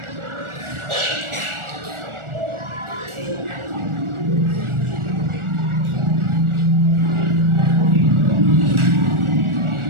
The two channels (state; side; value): late; left; 1.4 ms